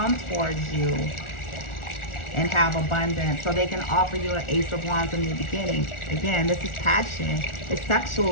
towards you and have abundance, so they can offer you an Ace of Wands in the beginning. Again, this is passion. It's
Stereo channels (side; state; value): right; late; 1.4 ms